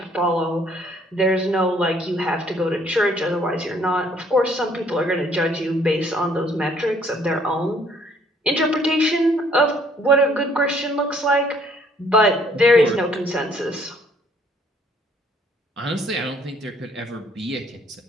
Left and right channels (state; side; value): normal; both; correlation 0.62